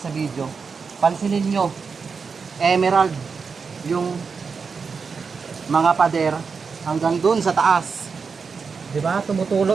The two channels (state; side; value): quieter; left; 5.3 dB